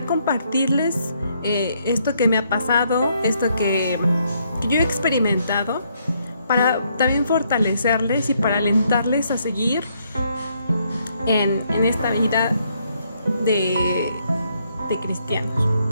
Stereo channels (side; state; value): both; inverted; correlation -0.73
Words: compartirles esto que me ha pasado, esto que yo he experimentado, para también fortalecerles y para alentarles a seguir en esta vida de cristianos.